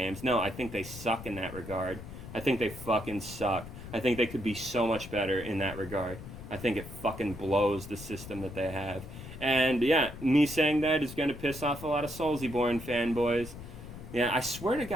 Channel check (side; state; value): left; noise; rumble, 12 dB below the sound